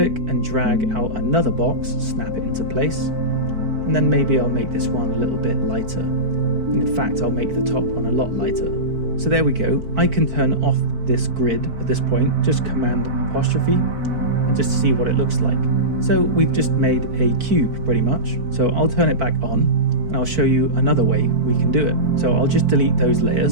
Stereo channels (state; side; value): late; left; 4.5 ms